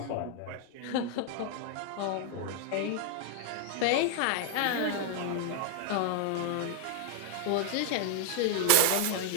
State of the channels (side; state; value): both; different; correlation 0.00